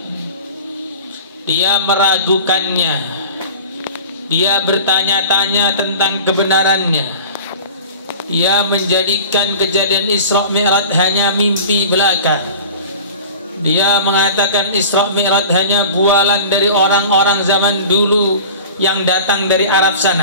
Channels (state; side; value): inverted; both; correlation -0.40